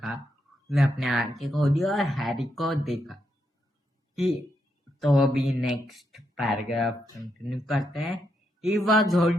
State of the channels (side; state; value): both; normal; correlation 0.81